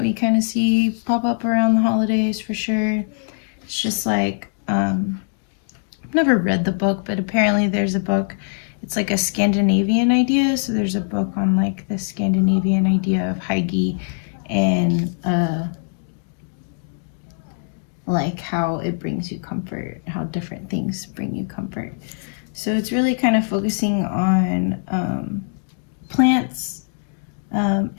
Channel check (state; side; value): silent; right; 63 dB below the other